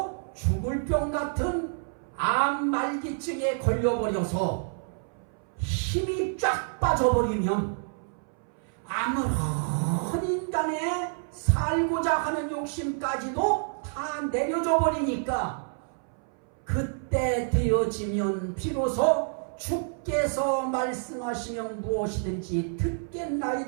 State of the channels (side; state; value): left; silent; 59 dB below the other